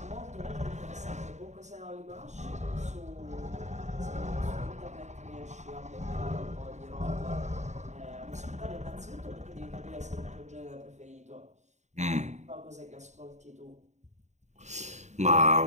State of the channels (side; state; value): left; late; 0.34 ms